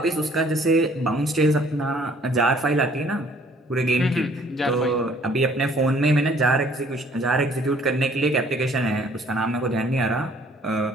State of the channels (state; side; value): normal; both; correlation 0.58